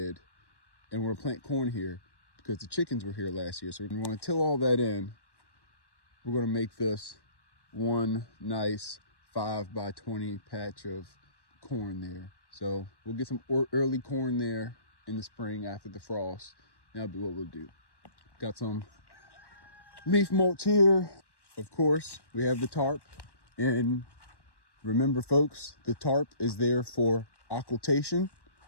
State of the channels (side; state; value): right; late; 1.1 ms